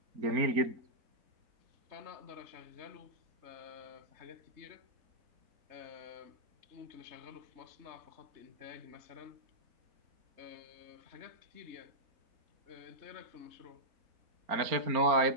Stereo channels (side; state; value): left; late; 4.3 ms